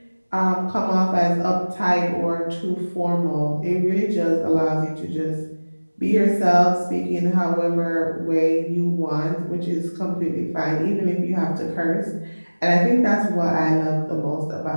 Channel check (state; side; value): inverted; both; correlation -1.00